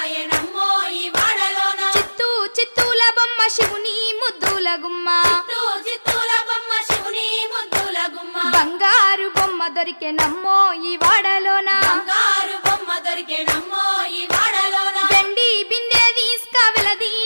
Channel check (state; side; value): inverted; both; correlation -1.00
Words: నమ్మో ఈ వాడలోన చిత్తూల బొమ్మ శివుని ముద్దుల గుమ్మ చిత్తూల బొమ్మ శివుని ముద్దుల గుమ్మ బంగారు బొమ్మ దొరికే నమ్మో ఈ వాడలోన బంగారు బొమ్మ దొరికే నమ్మో ఈ వాడలోన వెండి బిందె తీసుకవెలది